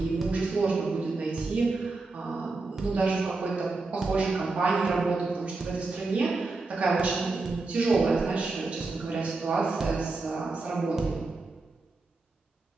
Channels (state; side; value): quieter; left; 3.6 dB